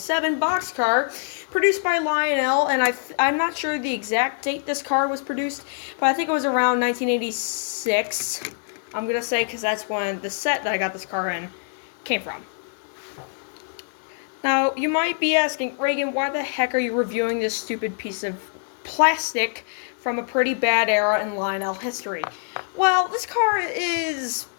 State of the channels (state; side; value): silent; right; 60 dB below the other